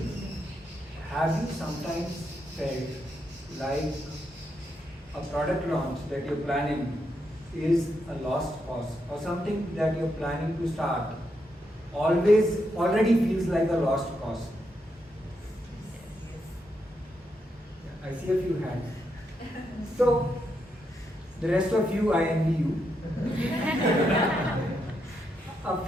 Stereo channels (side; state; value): both; normal; correlation 0.81